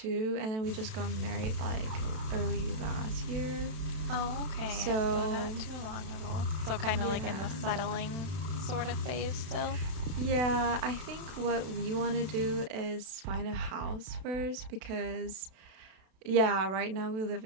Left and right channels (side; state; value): left; late; 32 ms